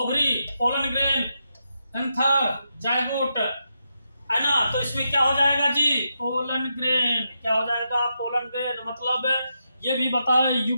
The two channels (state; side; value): inverted; both; correlation -0.84